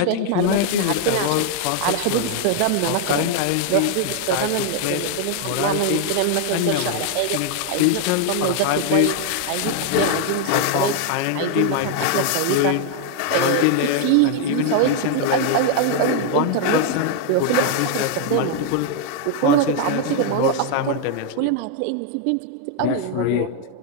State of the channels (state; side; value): different; both; correlation 0.00